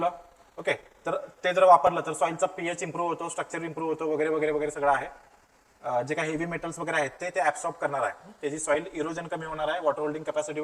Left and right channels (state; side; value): identical; both; correlation 1.00